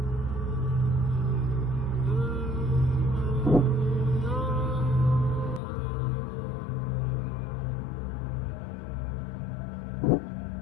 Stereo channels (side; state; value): right; drops out; at 5.6 s